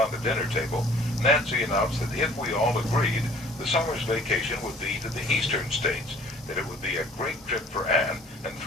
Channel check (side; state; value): both; normal; correlation 0.52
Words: the dinner table, Nancy announced that if we all agreed, the summer's vacation would be to the eastern states, that it would be a great trip for Anne and